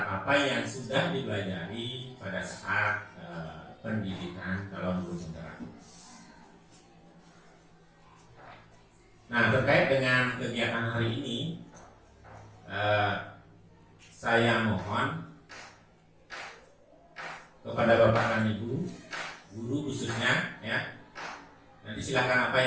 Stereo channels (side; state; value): both; identical; correlation 1.00